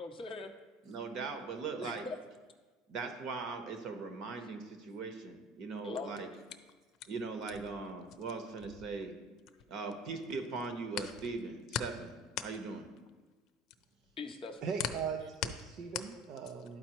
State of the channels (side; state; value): both; normal; correlation 0.44